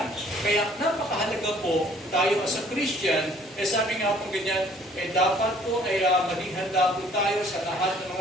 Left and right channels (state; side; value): normal; both; correlation 0.57